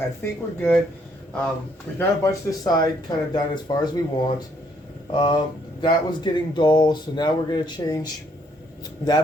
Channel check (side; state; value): both; normal; correlation 0.69